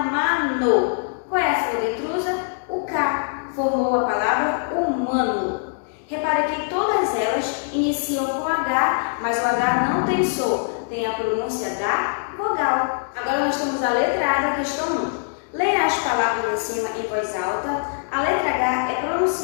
Qual é a sílaba intrusa? O K. Formou a palavra humano. Repara que todas elas iniciam com H, mas o H não tem som, tem a pronúncia da vogal. Agora nós temos a letra A da questão 1. Leia as palavras em cima em voz alta. A letra H é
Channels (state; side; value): silent; right; digital silence